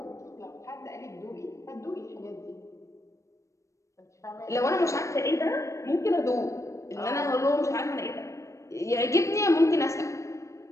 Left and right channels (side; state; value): right; late; 0.15 ms